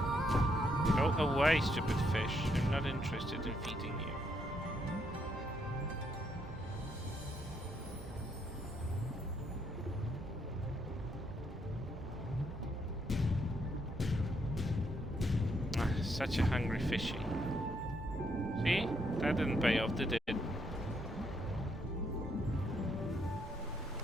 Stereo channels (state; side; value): normal; both; correlation 0.75